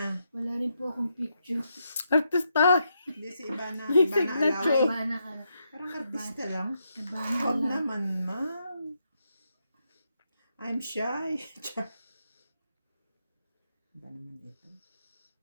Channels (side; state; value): both; inverted; correlation -0.81